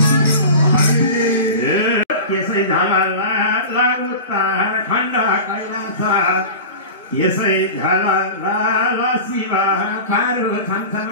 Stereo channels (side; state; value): both; inverted; correlation -0.32